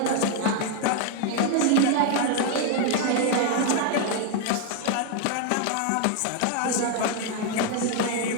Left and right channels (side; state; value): both; different; correlation 0.00